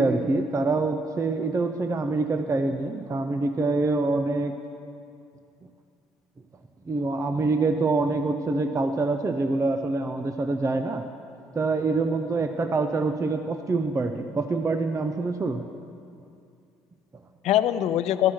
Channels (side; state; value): both; normal; correlation 0.71